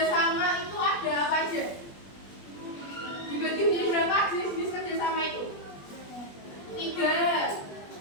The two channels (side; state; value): right; late; 20 ms